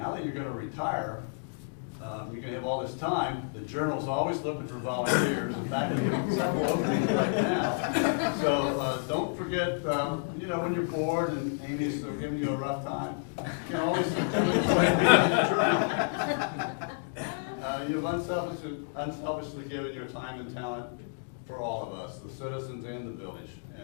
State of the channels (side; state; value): right; silent; digital silence